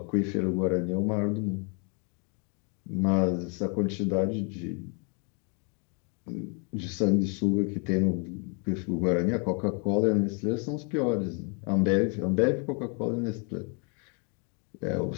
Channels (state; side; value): quieter; right; 36.9 dB